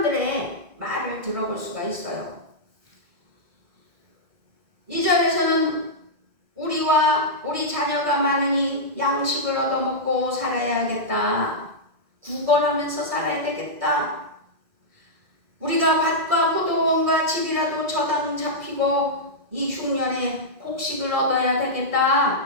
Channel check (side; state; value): left; late; 2.0 ms